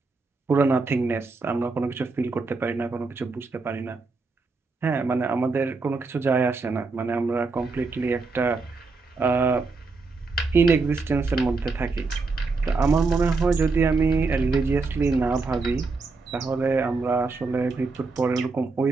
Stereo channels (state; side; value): quieter; left; 4.0 dB